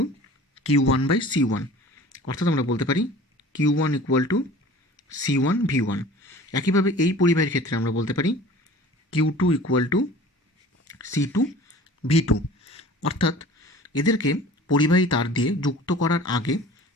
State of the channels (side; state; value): both; normal; correlation 0.44